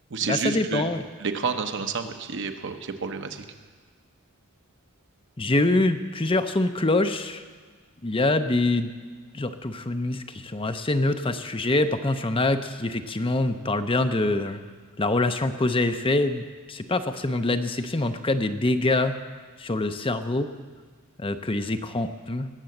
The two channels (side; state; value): both; normal; correlation 0.55